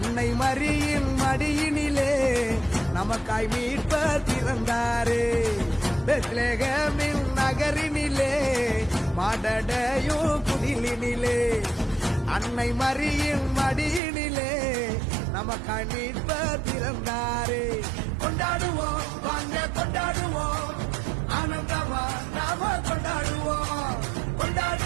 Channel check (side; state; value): left; drops out; at 14.0 s